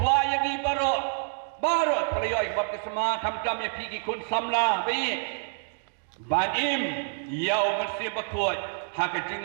yang ni baru. Baru pelayan baptisma kam-kam yang pergi kun samlah bayi banim yau mesti berkut hak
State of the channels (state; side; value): silent; left; digital silence